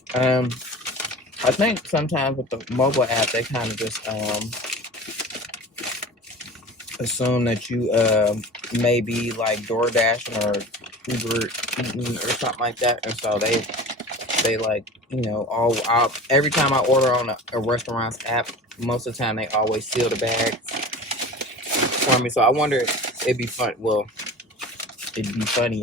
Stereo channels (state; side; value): normal; both; correlation 0.37